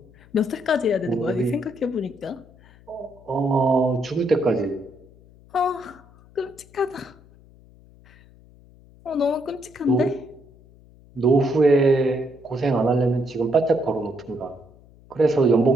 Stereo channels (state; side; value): noise; left; hum, 26 dB below the sound